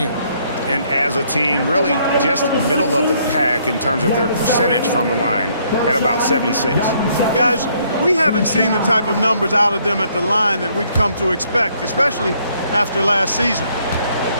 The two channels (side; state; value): both; inverted; correlation -0.67